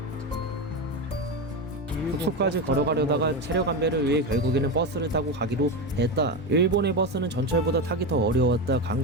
숙소까지 걸어가려다가 체력 안배를 위해 결국에는 버스를 타고 가기로 했다. 일본의 버스는 전철보다 타기 더 어려웠다.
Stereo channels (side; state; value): both; normal; correlation 0.16